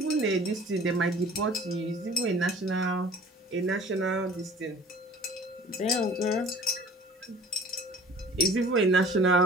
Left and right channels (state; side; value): normal; both; correlation 0.46